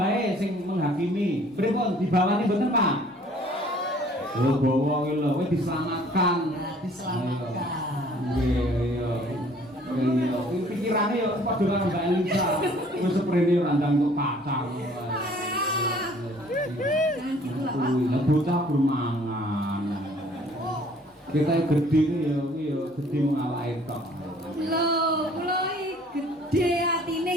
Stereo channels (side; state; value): both; normal; correlation 0.56